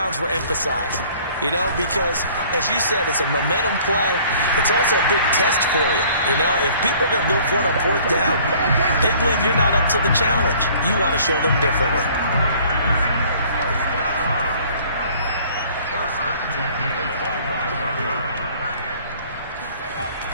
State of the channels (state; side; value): inverted; both; correlation -0.54